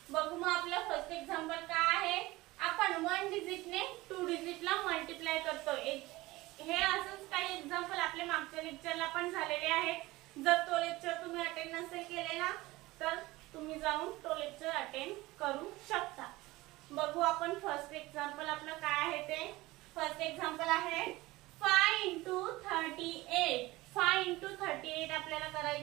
बघू मग आपलं फर्स्ट एक्झाम्पल काय आहे। आपण 1 डिजिटने 2 डिजिटला मल्टिप्लाय करतोय। हे असंच काही एग्जांपल आपले मागच्या लेक्चरला पण झालेले आहेत। जर तो लेक्चर तुम्ही अटेंड नसेल केलेला तर तुम्ही जाऊन तो लेक्चर अटेंड करू शकता। बघू आपण फर्स्ट एक्झाम्पल आपलं काय आहे ते। फर्स्ट एक्झाम्पल आहे 5 * 38। 5 * 38 आपल्याला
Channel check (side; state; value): left; quieter; 19.7 dB